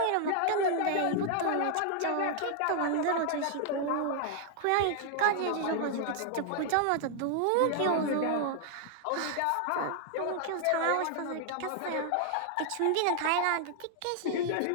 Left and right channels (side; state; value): both; different; correlation 0.00